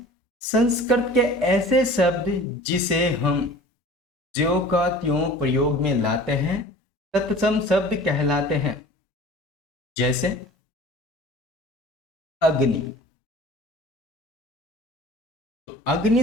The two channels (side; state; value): both; normal; correlation 0.44